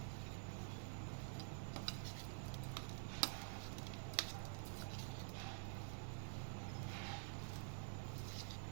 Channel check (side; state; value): left; silent; digital silence